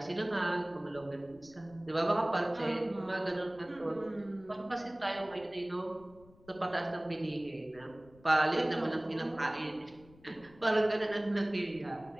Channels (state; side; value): noise; left; rumble, 24 dB below the sound